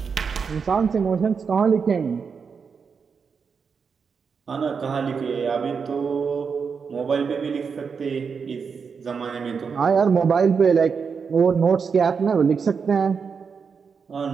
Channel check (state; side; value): quieter; left; 5.8 dB